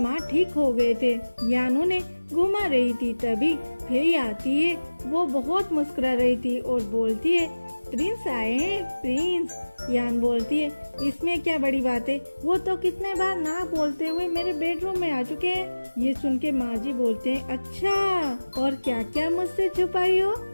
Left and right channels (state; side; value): inverted; both; correlation -1.00